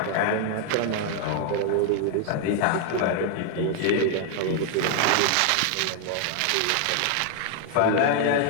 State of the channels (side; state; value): both; different; correlation 0.00